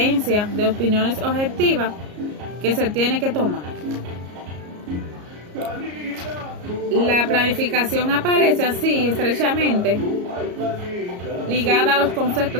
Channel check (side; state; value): left; late; 34 ms